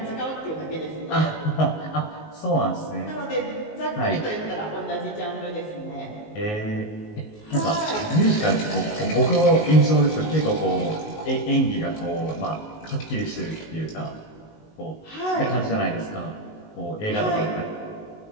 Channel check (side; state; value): right; late; 19 ms